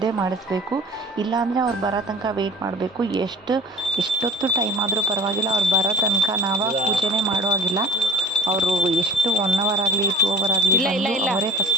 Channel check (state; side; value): normal; both; correlation 0.43